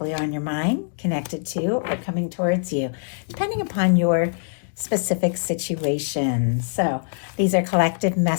on your mind, connected to, or coming towards you, depending upon your specific situation. So these are collective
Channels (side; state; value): right; silent; digital silence